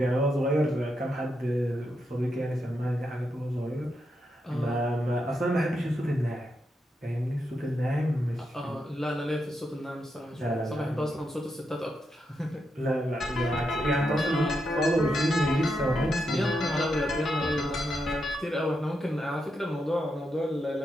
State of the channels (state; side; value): normal; both; correlation 0.84